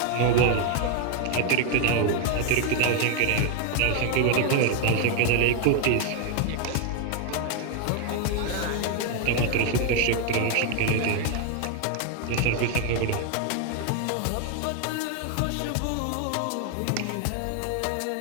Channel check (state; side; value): different; both; correlation 0.01